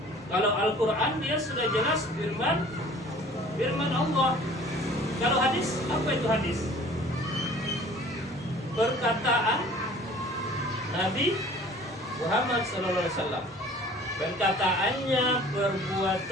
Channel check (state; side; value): normal; both; correlation 0.49